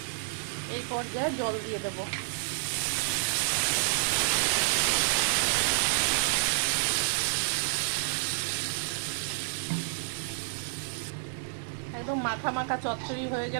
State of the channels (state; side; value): silent; left; digital silence